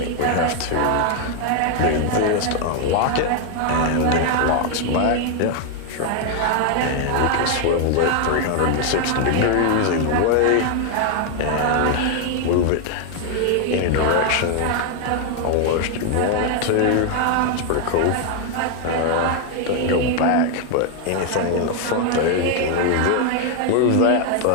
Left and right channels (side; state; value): both; different; correlation 0.01